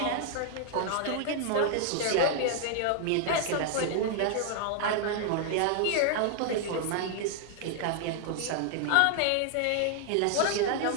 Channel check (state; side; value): different; both; correlation 0.00